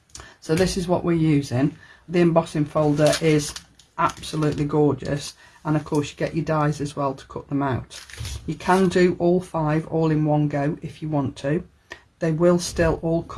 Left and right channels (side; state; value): both; identical; correlation 1.00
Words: so this is what we're using. The embossing folder is absolutely gorgeous, and of course you get your dies as well to cut them out. You can do all 5 all in one go if you want to. They will still all